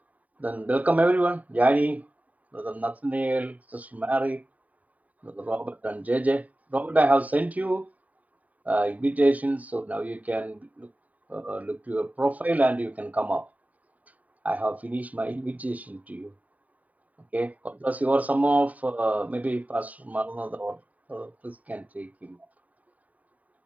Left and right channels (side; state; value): left; late; 0.072 ms